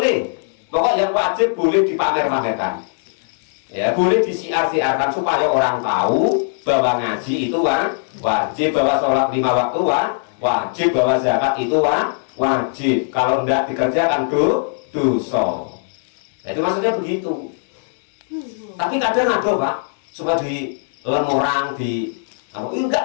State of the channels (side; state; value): right; silent; digital silence